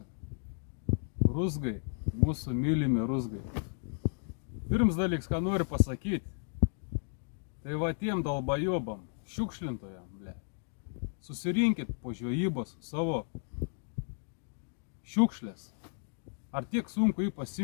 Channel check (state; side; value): silent; right; digital silence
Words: Ruzgai, mūsų mylimi ruzgai. Pirms dalyks, ką noriu pasakyti, tai va tiem dalbajobam, šiukšlintojam, ble. Susirinkit po žvejybos savo šiukšlės. Ar tiek sunku jį